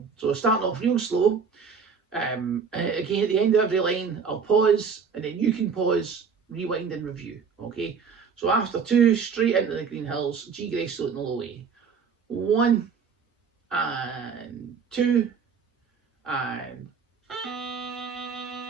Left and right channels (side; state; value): left; quieter; 5.9 dB